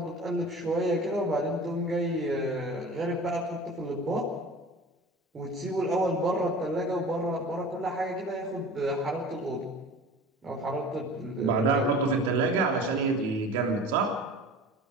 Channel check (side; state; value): both; normal; correlation 0.39